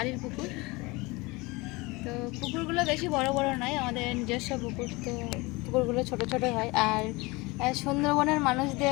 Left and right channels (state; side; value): quieter; right; 24.0 dB